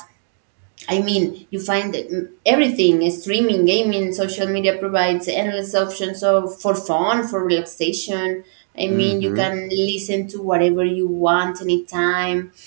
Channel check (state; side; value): silent; left; digital silence